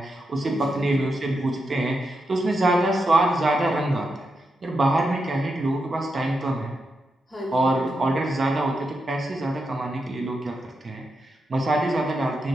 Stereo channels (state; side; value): normal; both; correlation 0.86